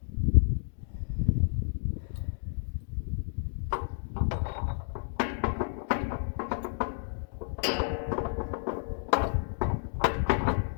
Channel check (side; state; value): right; silent; digital silence